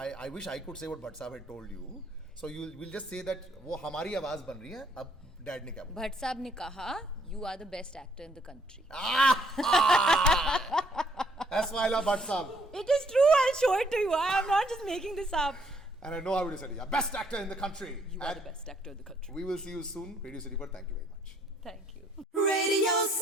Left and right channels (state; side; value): normal; both; correlation 0.67